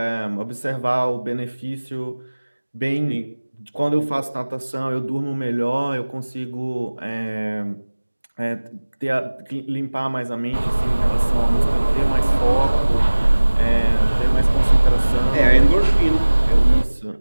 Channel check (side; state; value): both; inverted; correlation -1.00